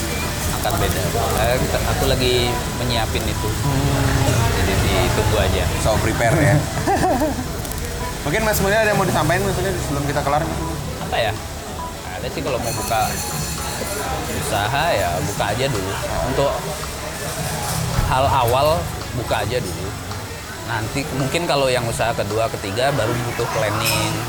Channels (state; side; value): identical; both; correlation 1.00